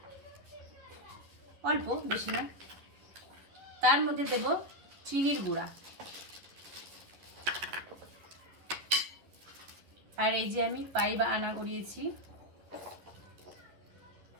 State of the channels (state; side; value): late; left; 11 ms